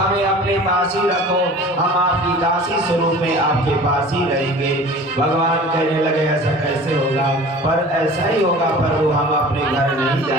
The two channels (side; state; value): both; normal; correlation 0.42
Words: अपने पास ही रखो, हम आपकी दासी स्वरूप में आपके पास ही रहेंगे। भगवान कहने लगे, ऐसा कैसे होगा? पर ऐसा ही होगा प्रभु, हम अपने घर नहीं